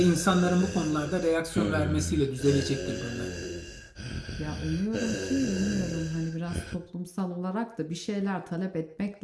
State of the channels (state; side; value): identical; both; correlation 1.00